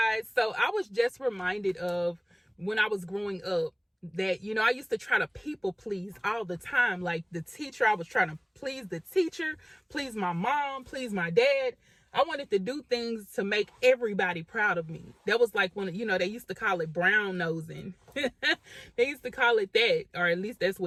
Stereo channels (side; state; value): both; identical; correlation 1.00